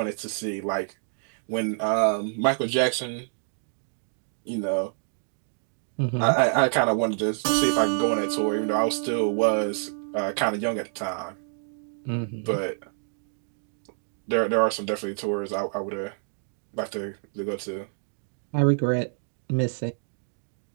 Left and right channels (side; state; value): left; silent; digital silence